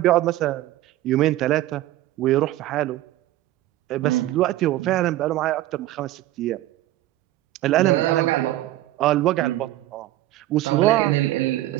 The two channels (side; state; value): left; quieter; 15.5 dB